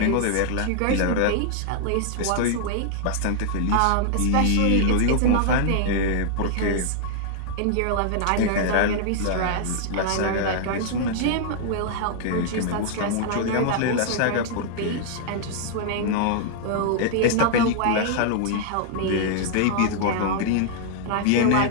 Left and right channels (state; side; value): different; both; correlation -0.01